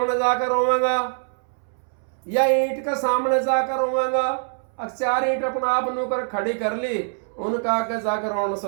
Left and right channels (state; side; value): silent; left; 63 dB below the other